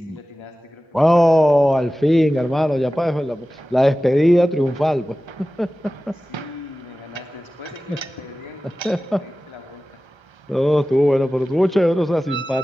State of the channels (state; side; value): normal; both; correlation 0.96